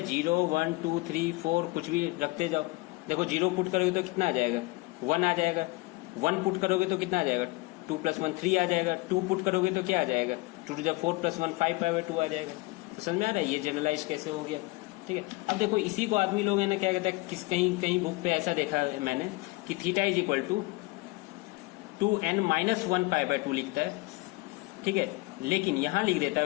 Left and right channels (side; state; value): right; quieter; 23.1 dB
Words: 0 1 2 3 4 कुछ भी रखते जाओ। देखो 0 पुट करोगे तो कितना आ जाएगा 1 आ जाएगा, 1 पुट करोगे तो कितना आ जाएगा 2 + 1 3 आ जाएगा, 2 पुट करोगे तो क्या आ जाएगा 2 × 4 + 1 5π/2 आ जाएगा। तो समझ में आ रहा है ये जनरलाइज कैसे हो गया, ठीक है। अब देखो इसी को आदमी लोग है ना क्या कहता है, कहीं बुक पे ऐसा देखा है मैंने कि थीटा = 2n-1 π/2 लिखता है, ठीक है। लेकिन यहाँ लिख देता